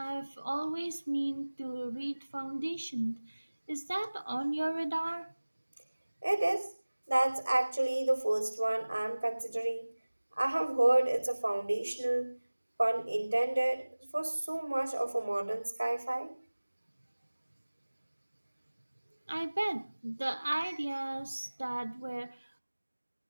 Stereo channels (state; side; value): inverted; both; correlation -1.00